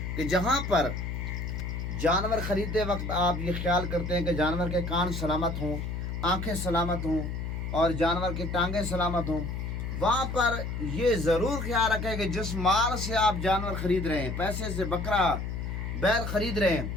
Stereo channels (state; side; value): noise; left; hum, 4 dB below the sound